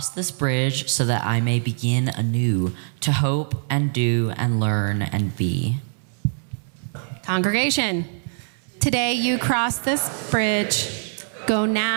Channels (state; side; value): silent; left; 63 dB below the other